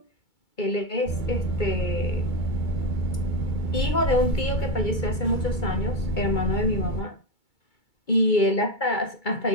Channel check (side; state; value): right; late; 2.3 ms